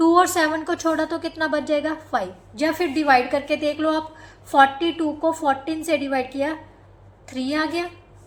और 7 को छोड़ा तो कितना बच जाएगा 5, या फिर डिवाइड करके देख लो आप, 42 को 14 से डिवाइड किया 3 आ गया,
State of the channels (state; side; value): identical; both; correlation 1.00